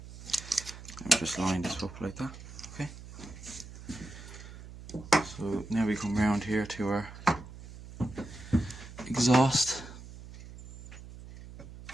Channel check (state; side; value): noise; right; hum, 15 dB below the sound